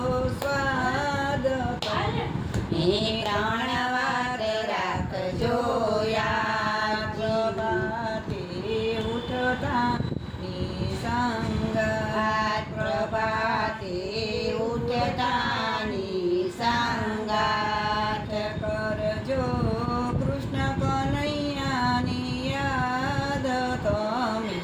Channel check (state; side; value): identical; both; correlation 1.00